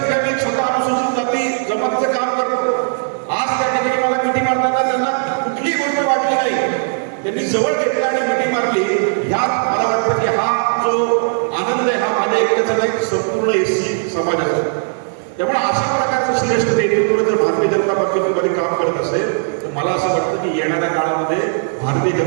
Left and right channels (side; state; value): left; silent; digital silence